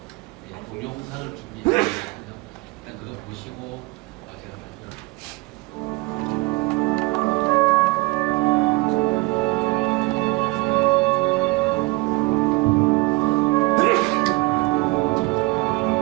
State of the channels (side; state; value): left; quieter; 24.2 dB